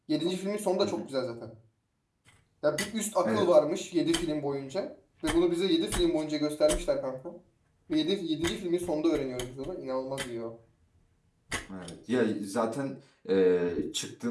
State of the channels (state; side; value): identical; both; correlation 1.00